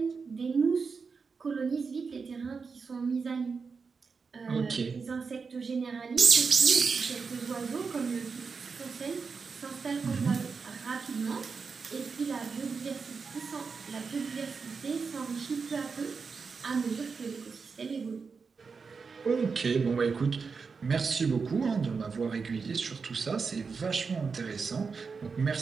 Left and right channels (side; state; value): left; quieter; 5.1 dB